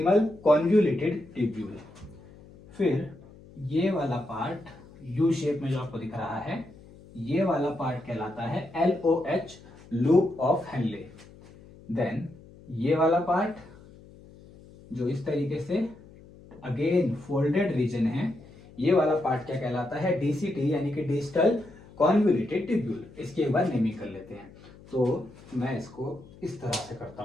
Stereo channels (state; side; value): noise; left; hum, 22 dB below the sound